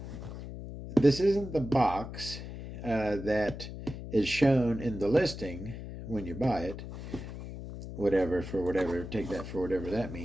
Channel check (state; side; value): noise; left; hum, 10 dB below the sound